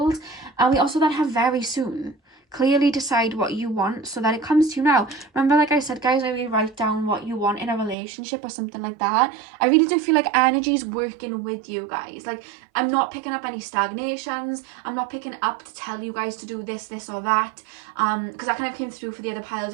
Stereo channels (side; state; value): left; drops out; at 8.0 s